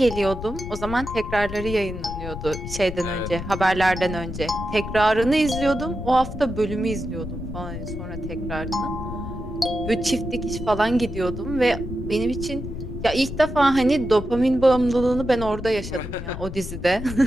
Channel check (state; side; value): noise; left; rumble, 8 dB below the sound